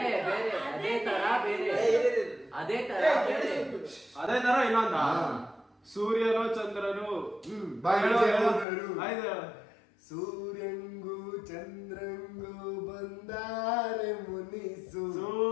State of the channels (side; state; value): right; drops out; at 8.7 s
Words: ಅದೇ ತರ ಬೇರೆ ಅದೇ ತರ ಇನ್ನೊಂದ ಸೂರ್ಯನು ಚಂದ್ರನು ಸೂರ್ಯಂಗೂ ಚಂದ್ರಂಗೂ ಬಂದಾರೆ ಮುನಿಸು.